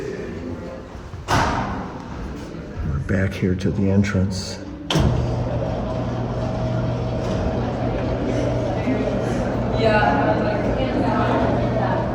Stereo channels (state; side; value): identical; both; correlation 1.00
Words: We're back here to the entrance.